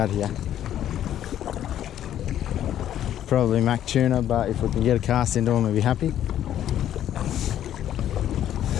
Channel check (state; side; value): quieter; right; 11.2 dB